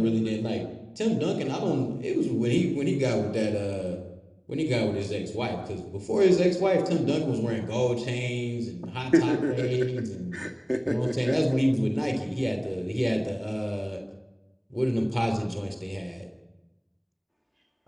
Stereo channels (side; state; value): both; identical; correlation 1.00